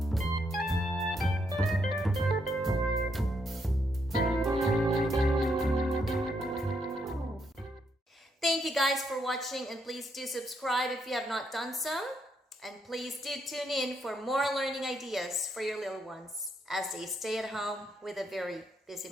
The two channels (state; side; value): normal; both; correlation 0.76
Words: Thank you guys for watching, and please do subscribe if you have not done so. And please do tune in for more learning ideas for your little ones as they stay at home with a very busy